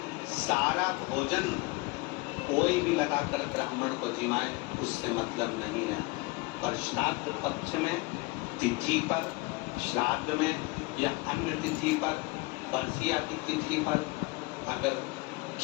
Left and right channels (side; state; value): right; quieter; 24.1 dB